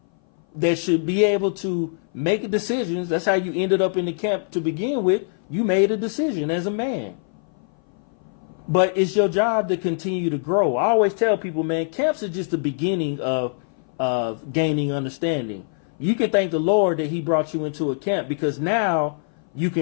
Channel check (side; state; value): right; silent; 58 dB below the other